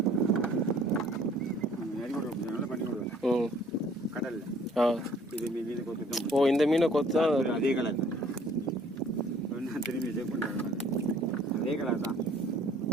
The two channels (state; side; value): normal; both; correlation 0.57